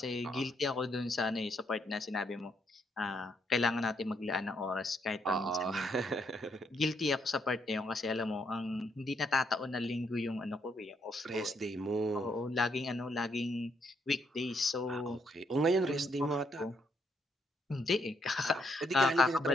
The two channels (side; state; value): both; normal; correlation 0.75